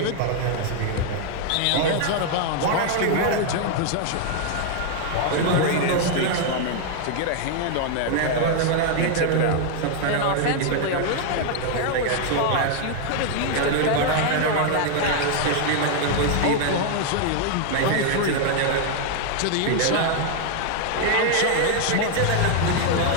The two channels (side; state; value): both; different; correlation 0.00